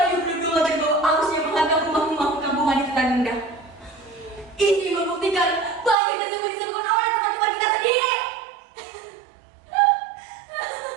berlubang terbawa arus yang menghantam rumah-rumah perkampungan di Tanunda. Ini membuktikan banjir tersebut disebabkan oleh teman-teman kita sendiri.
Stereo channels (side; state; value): left; drops out; at 6.0 s